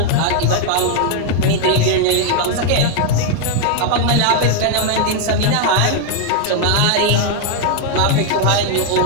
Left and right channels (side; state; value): both; different; correlation 0.00